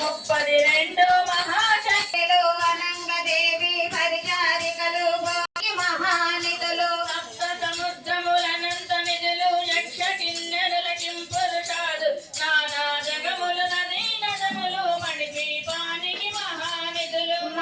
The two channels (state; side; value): identical; both; correlation 1.00